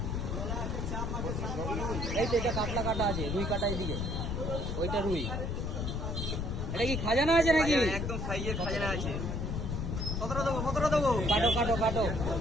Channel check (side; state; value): left; noise; rumble, 2 dB below the sound